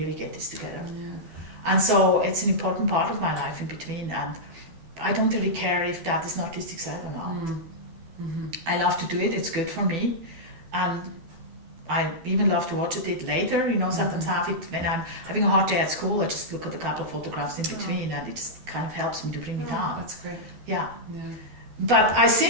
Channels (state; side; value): late; left; 12 ms